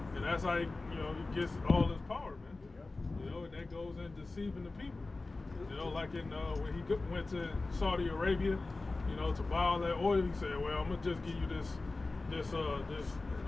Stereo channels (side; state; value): right; quieter; 3.4 dB